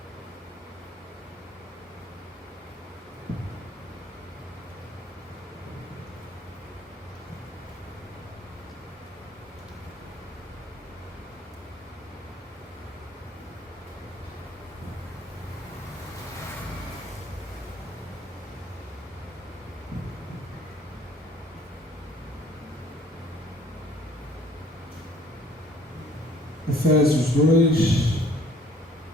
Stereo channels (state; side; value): normal; both; correlation 0.58